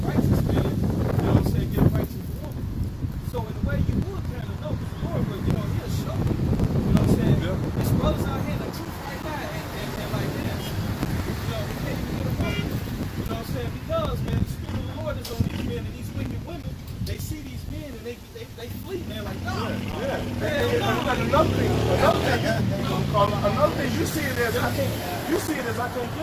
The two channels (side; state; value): both; identical; correlation 1.00